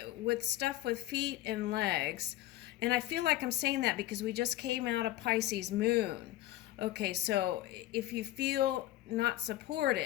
with stuff with feet and legs, and I feel like I'm saying that because we just came out of Pisces moon. Okay, so if you feel not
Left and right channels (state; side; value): quieter; right; 15.1 dB